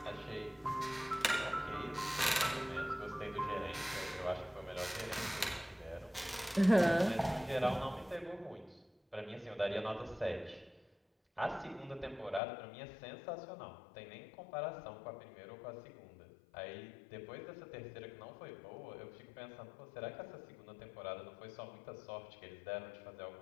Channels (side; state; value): right; drops out; at 12.4 s